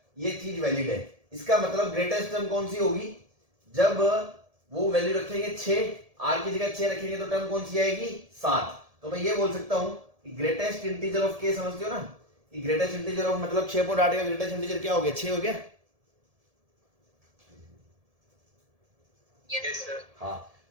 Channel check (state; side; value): late; left; 1.7 ms